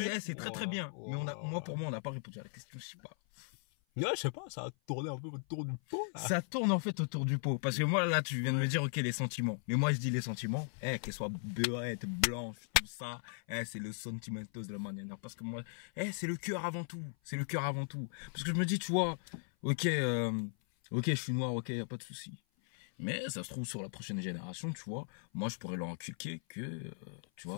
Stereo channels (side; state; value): right; silent; 53 dB below the other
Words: c'est très bien. Mais pour moi, on n'a pas répondu à la question, je sais pas. Ouais, je sais pas, ça a tourné un peu autour du pot. Là. Ça tourne en fait autour du pot. Parce que moi, là, tu viens de me dire, ok, les sentiments. Mais moi, je dis les sentiments, qu'elles soient beurrettes, blanches, tout ça, c'est le sentimentos de la manière. Parce que moi, c'est le cœur avant tout. C'est le cœur avant tout. Parce que je me dis, tu vois, ok, je suis noir, ok, y a pas de souci. Mais ça se trouve sur la prochaine génération, tu vois, moi, je pourrais leur inculquer que, tu vois.